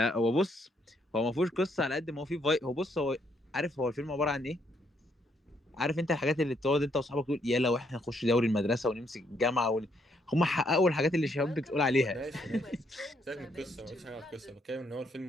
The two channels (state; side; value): normal; both; correlation 0.73